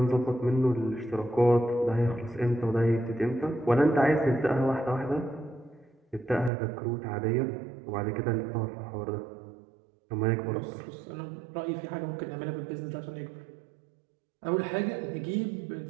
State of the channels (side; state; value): left; drops out; at 6.5 s